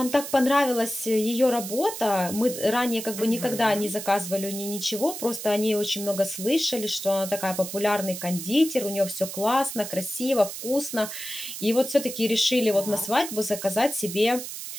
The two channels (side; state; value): right; noise; hiss, 8 dB below the sound